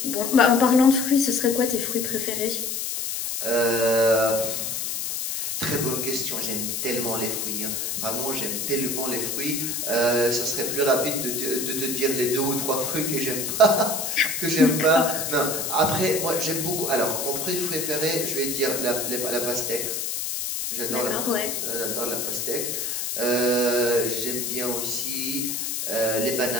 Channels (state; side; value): noise; left; hiss, 2 dB below the sound